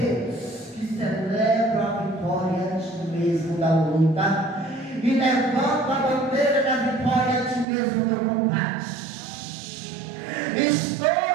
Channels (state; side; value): drops out; left; at 7.7 s